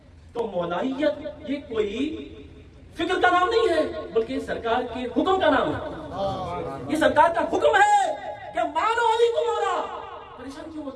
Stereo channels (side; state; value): both; identical; correlation 1.00